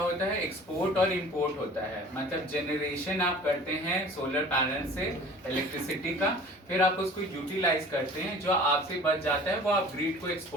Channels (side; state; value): both; normal; correlation 0.45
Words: है, एक्सपोर्ट और इंपोर्ट होता है, मतलब जनरेशन आप करते हैं सोलर पैनल से इलेक्ट्रिसिटी का, फिर आप उसको यूटिलाइज करते हैं, जो आपसे बच जाता है वो आप ग्रिड को